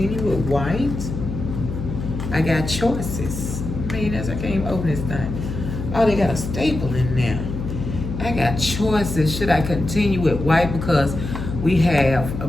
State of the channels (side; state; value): left; noise; hum, 6 dB below the sound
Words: with white? I got choices. Man, I can't even open this thing. Oh, they got a staple in there. I got choices. Should I continue with white? Because we have a